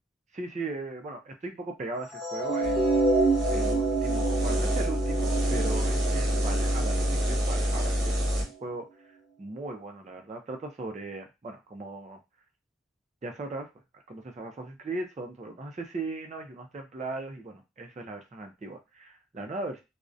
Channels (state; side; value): normal; both; correlation 0.70